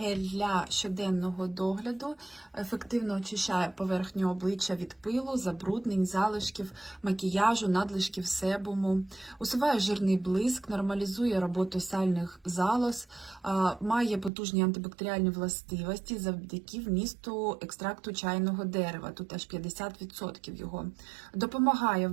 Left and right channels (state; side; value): drops out; left; at 14.3 s